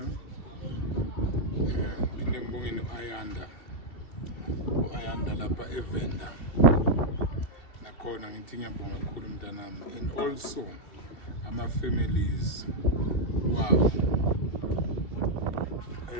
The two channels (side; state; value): right; late; 2.7 ms